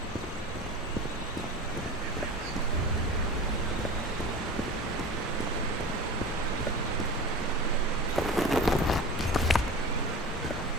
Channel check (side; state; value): both; normal; correlation 0.34